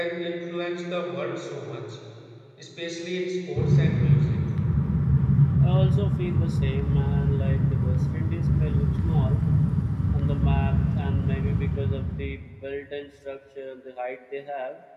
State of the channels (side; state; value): both; identical; correlation 1.00